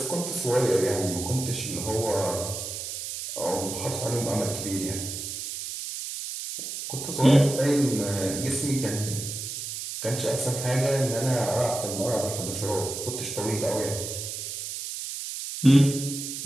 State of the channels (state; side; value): noise; right; hiss, 6 dB below the sound